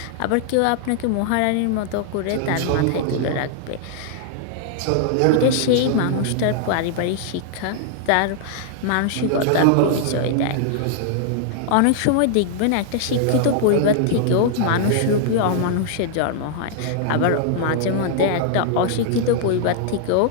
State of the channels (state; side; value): different; both; correlation -0.01